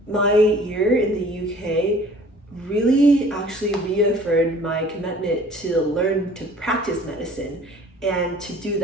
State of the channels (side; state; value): both; normal; correlation 0.50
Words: my year in the UK really actually reaffirmed my commitment to learn to practice medicine and to do